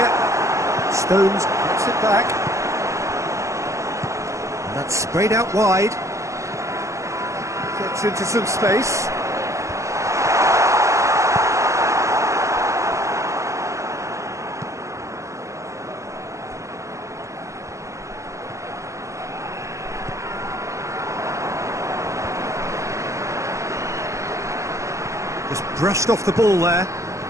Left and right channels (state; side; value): late; left; 0.15 ms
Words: Stones gets it back. And that's sprayed out wide. Gets into some space. Just brushed off the ball there.